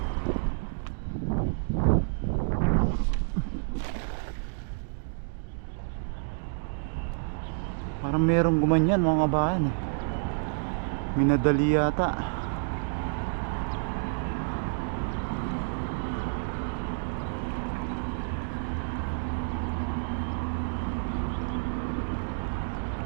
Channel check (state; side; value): silent; left; digital silence